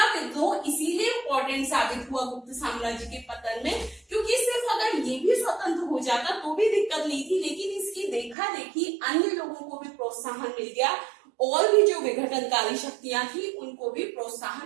विद्रोह इसीलिए इंपॉर्टेंट साबित हुआ गुप्त साम्राज्य के पतन में, क्योंकि सिर्फ अगर ये भी स्वतंत्र हो जाता तो भी दिक्कत नहीं थी, लेकिन इसकी देखा देखी अन्य लोगों को भी प्रोत्साहन मिल गया और भी जो विघटनकारी शक्तियां थी उनको भी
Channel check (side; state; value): left; drops out; at 8.3 s